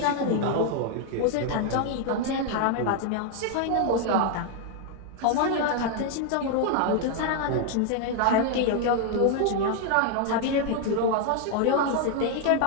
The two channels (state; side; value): different; both; correlation 0.00